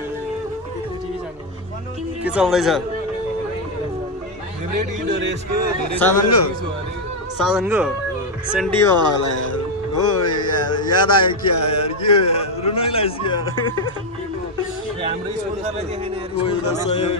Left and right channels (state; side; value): normal; both; correlation 0.04